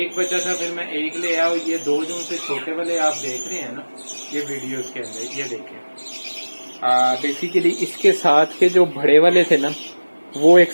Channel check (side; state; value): both; inverted; correlation -1.00